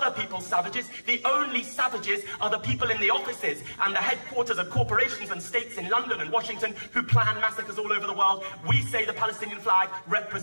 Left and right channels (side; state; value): both; inverted; correlation -1.00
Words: people savages. The only savages are the people in the offices and the headquarters of corporations and states in London and Washington who plan massacres all over the world. We say the Palestinian flag